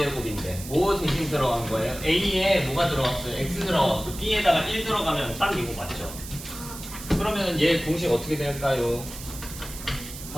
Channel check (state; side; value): noise; right; hiss, 12 dB below the sound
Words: 뭐 대신 들어간 거예요? a에 뭐가 들어갔어요? x 들어갔고 b에다가 1 들어가면 딱 이거 맞죠? 그러면 얘 공식 어떻게 될까요?